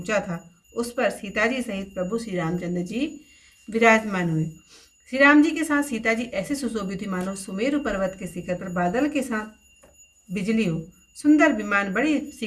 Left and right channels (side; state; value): both; identical; correlation 1.00